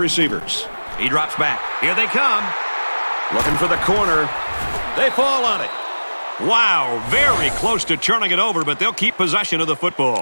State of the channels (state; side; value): inverted; both; correlation -1.00